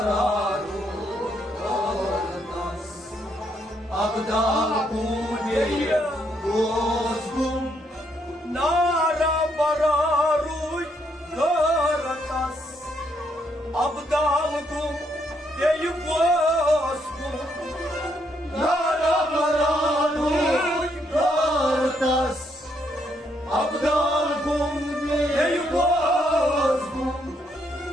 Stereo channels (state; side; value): normal; both; correlation 0.74